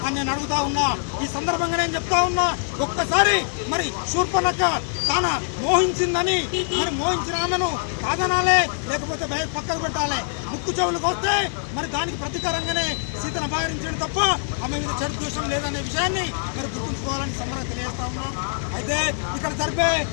అని నేను అడుగుతా ఉన్నా. ఈ సందర్భంగా నేను చెప్తా ఉన్నా, ఒక్కసారి మరి శూర్పణఖ తాన మోహించిందని మరి మోహించిన ఆమెను కాదనాలే, లేకపోతే పక్కకు పెట్టాలి. ముక్కు చెవులకు వస్తే మరి దానికి ప్రతీకారంగానే సీతను అపహరించడం తప్ప ఆమె మీద చెడు దోషం లేదనే విషయాన్ని మరి గుర్తుంచుకోవాలని సంబరం తెలియజేస్తా ఉన్నాం. అయితే ఇక్కడ జరిపే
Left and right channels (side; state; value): right; silent; digital silence